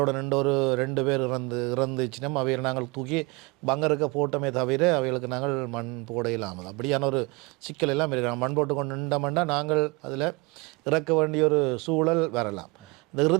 2 பேர் இறந்துச்சுன்னா அவையை நாங்கள் தூக்கி பங்கருக்க போட்டோமே தவிர அவைகளுக்கு நாங்கள் மண் போட இல்லாமல் அப்படியான ஒரு சிக்கல் எல்லாம் இருக்கிறாங்க. மண் போட்டு கொண்டு நின்றோம்னா நாங்கள் அதில் இறக்க வேண்டிய ஒரு சூழல் வரலாம். இந்த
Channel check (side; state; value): left; quieter; 26.9 dB